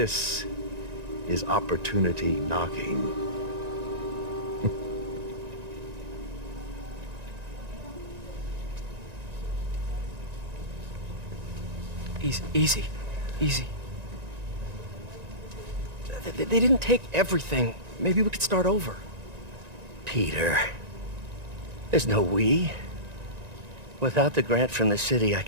is opportunity knocking. Easy. They didn't take everything. Maybe we could start over. Peter, there's no we. Without the grant from the city, I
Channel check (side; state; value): left; late; 1.9 ms